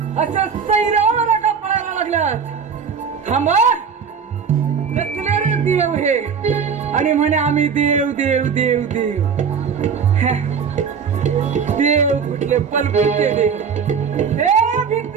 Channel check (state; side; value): quieter; left; 6.5 dB